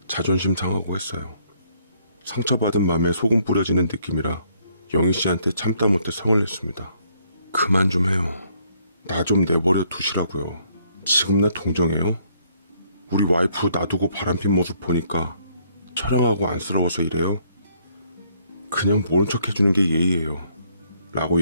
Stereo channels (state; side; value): inverted; both; correlation -0.67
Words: 자존심 상하고 했어요. 상처받은 맘에 소금 뿌려지는 느낌이라 영희 씨한테 참다 못해 성을 냈습니다. 그만 좀 해요. 나 좀 내버려 두시라고요. 지금 나 동정해요? 우리 와이프 놔두고 바람핀 모습 보니까 처량하고 안쓰러워서 이래요? 그냥 모른 척 해주는 게 예의예요. 라고